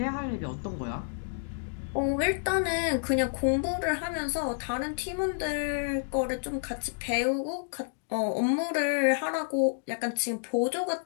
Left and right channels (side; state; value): right; silent; digital silence